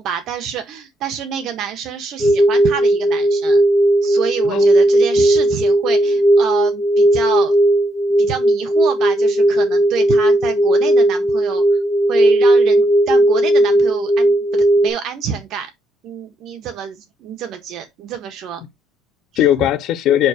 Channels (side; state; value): both; normal; correlation 0.78